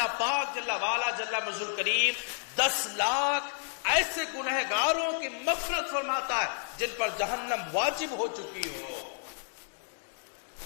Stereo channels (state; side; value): silent; right; digital silence